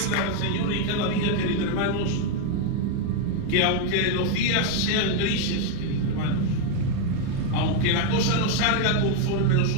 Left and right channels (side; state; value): both; different; correlation 0.00